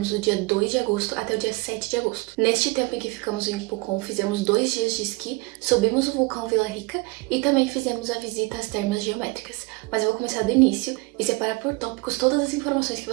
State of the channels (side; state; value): left; quieter; 24.3 dB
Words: do dia 2 de agosto até o dia 7 de agosto. Neste tempo em que ficamos em Pucón, fizemos 2 dias de esqui, subimos o vulcão Vila Rica e também fizemos a visita às termas geométricas. Mas eu vou começar do início e separar por tópicos todas as informações que